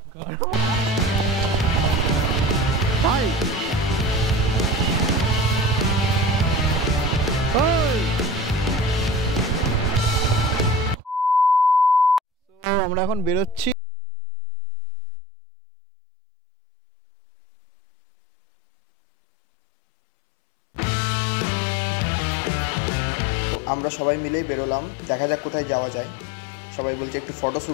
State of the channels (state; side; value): drops out; right; at 13.8 s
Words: ভাই আমরা এখন বেরোচ্ছি। এই হচ্ছে আমাদের সব গাড়িগুলো। আমরা সবাই মিলেই বেরোলাম, দেখা যাক কোথায় যাওয়া যায়। সবাই বলছে একটু